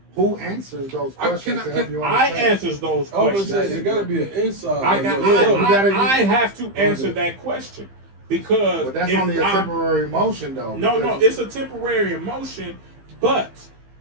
who answers those questions to help you I understand? answers those I was questions. gonna say it gotta be an inside. I have to answer that question because But that's if only a temporary emotion though. No, because- it's a temporary emotion, but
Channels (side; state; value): left; late; 15 ms